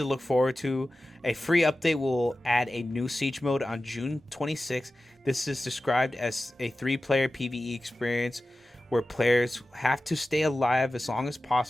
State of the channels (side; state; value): both; normal; correlation 0.94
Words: look forward to. A free update will add a new siege mode on June 26th. This is described as a 3-player PvE experience where players have to stay alive as long as